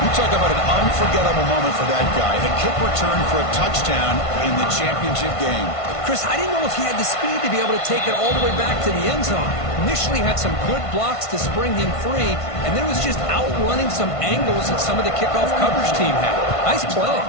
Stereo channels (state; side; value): late; right; 1.5 ms